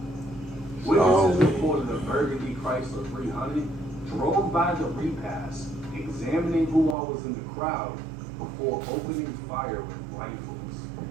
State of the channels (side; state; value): left; drops out; at 7.0 s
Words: Witnesses reported a Burgundy Chrysler 300 drove by the repast, examining who all was in the crowd before opening fire with rifles.